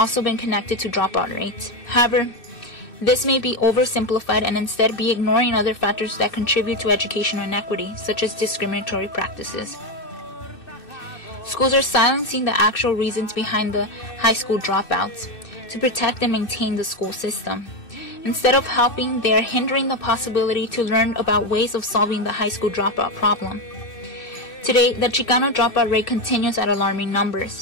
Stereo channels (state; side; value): late; right; 2.6 ms